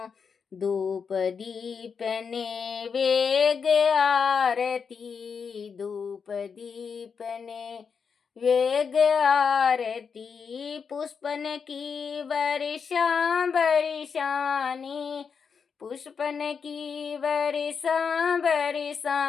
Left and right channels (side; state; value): right; quieter; 6.1 dB